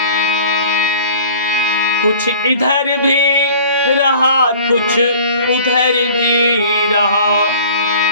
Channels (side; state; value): both; inverted; correlation -0.46